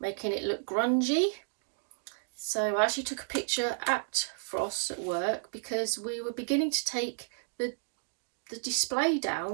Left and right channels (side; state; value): left; silent; digital silence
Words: making it look grungy. So I actually took a picture at Frost at work because we were beginning to take the display